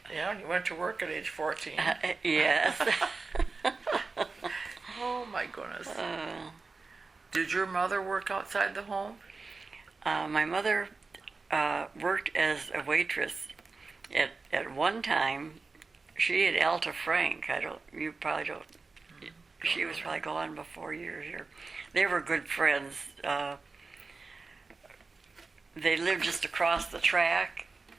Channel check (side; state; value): left; quieter; 4.1 dB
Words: Yeah, and you went to work at age 14. Yes. Oh my goodness. Did your mother work outside the home? My mother worked as a waitress at one time. She had Alta Frank. You probably don't. She was probably gone before you were here. They were good friends. They lived just across the track.